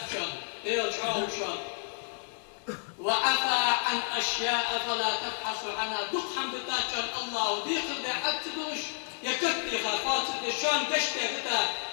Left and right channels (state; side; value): silent; right; 57 dB below the other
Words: شان ديال شعور شان وعفى عن أشياء فلا تبحثوا عنها دق حمد تاجان الله ديخل دا حتدوش يكتي خافات الشان قشته بتا